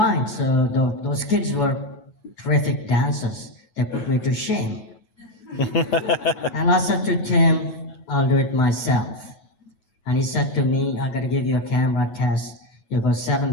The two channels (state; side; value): late; right; 9.2 ms